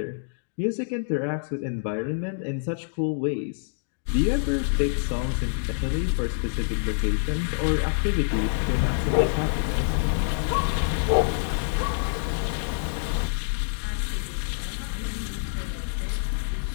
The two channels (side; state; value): right; silent; digital silence